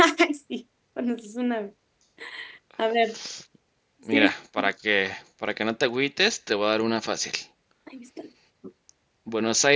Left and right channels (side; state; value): both; identical; correlation 1.00